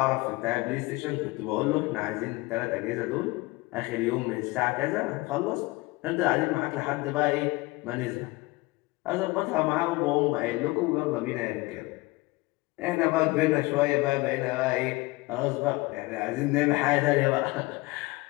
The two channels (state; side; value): quieter; right; 22.4 dB